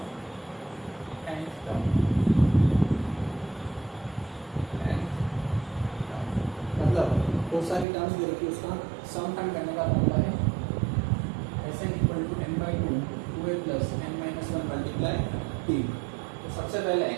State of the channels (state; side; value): drops out; left; at 7.9 s